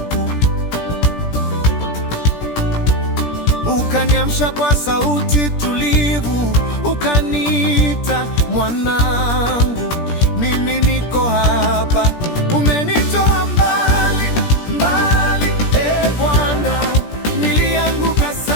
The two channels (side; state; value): right; late; 17 ms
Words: ukaniamsha kwa sauti tulivu, ukaniita mwanangu, mimi niko hapa. Umenitoa mbali mbali, e Bwana, nilianguka